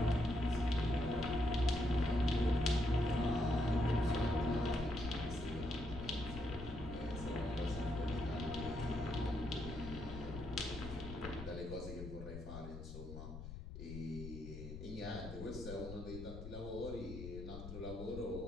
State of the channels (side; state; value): left; noise; rumble, 9 dB below the sound